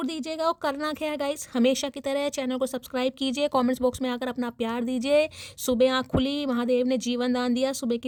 दीजिएगा। और करना क्या है गाइज, हमेशा की तरह चैनल को सब्सक्राइब कीजिए, कॉमेंट्स बॉक्स में आकर अपना प्यार दीजिए। सुबह आँख खुली, महादेव ने जीवन दान दिया, सुबह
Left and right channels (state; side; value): identical; both; correlation 1.00